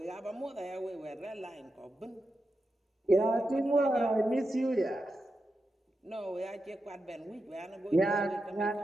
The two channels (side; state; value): both; normal; correlation 0.88